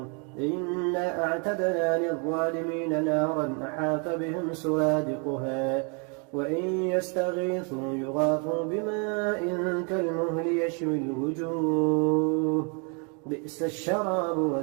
إنا أعتدنا للظالمين نارا أحاط بهم سرادقها وإن يستغيثوا يغاثوا بماء كالمهل يشوي الوجوه بئس الشراب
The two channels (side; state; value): left; quieter; 36.6 dB